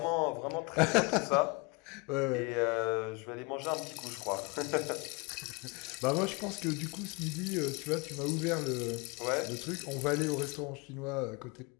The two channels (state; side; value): quieter; right; 28.6 dB